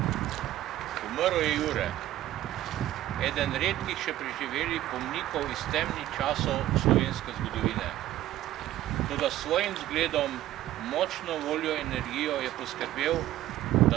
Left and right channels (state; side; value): quieter; left; 14.1 dB